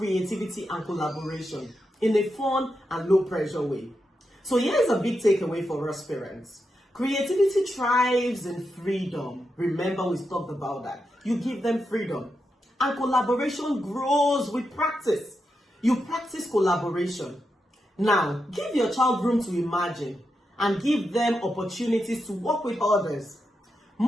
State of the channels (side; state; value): both; normal; correlation 0.86